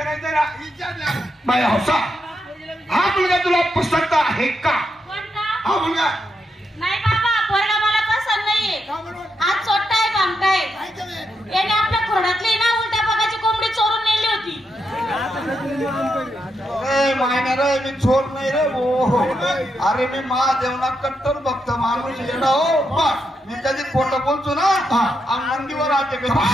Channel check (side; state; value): both; normal; correlation 0.83